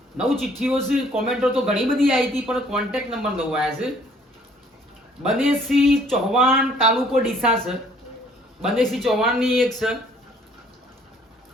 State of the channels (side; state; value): both; normal; correlation 0.60